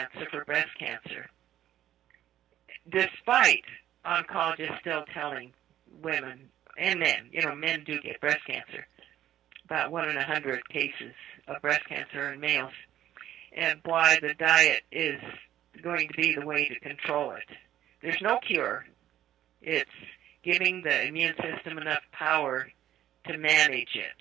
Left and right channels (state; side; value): quieter; left; 12.2 dB